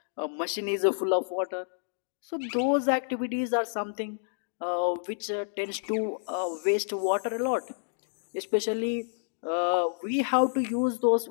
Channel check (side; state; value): right; silent; digital silence